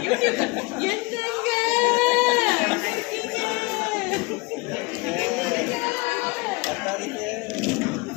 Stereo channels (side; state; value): right; quieter; 25.9 dB